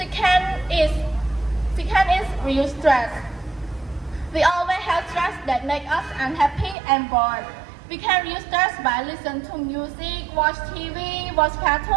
is reduce stress. We always have stress that make us unhappy and bored. We can reduce stress by listening to music, watch TV, watch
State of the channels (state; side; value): drops out; left; at 6.8 s